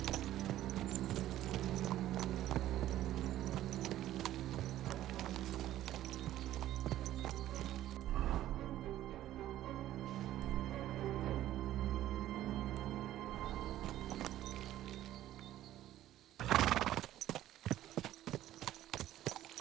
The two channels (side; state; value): left; quieter; 13.5 dB